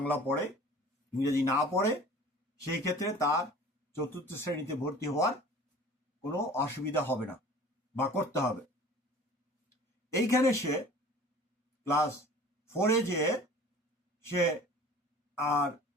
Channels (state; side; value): normal; both; correlation 0.45